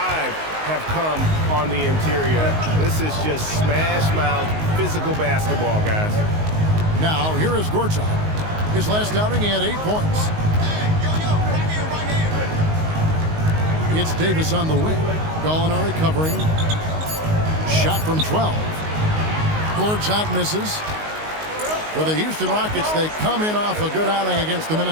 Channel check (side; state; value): left; late; 19 ms